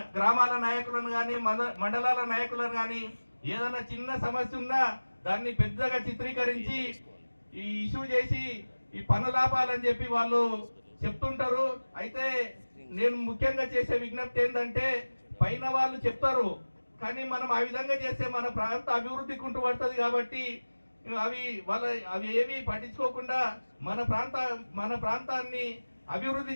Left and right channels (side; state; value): both; inverted; correlation -1.00